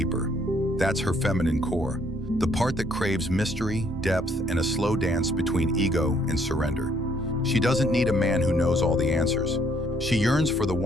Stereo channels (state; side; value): normal; both; correlation 0.66